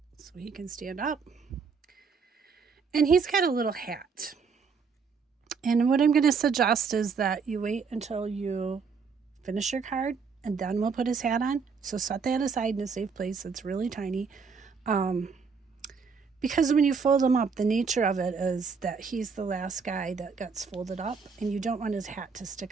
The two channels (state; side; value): quieter; left; 5.5 dB